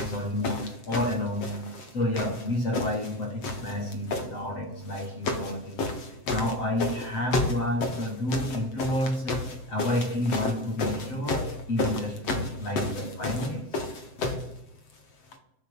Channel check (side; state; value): right; late; 7.8 ms